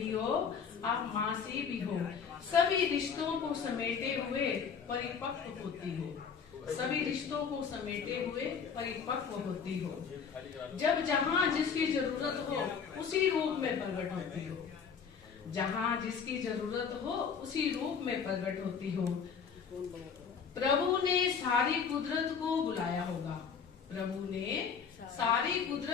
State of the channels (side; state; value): right; quieter; 6.4 dB